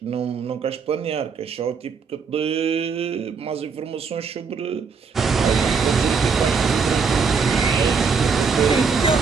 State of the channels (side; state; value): left; quieter; 5.4 dB